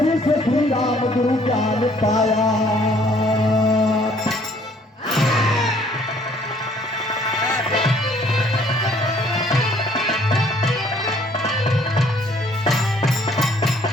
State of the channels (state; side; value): normal; both; correlation 0.61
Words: से श्री राम गुरु ज्ञान पाया।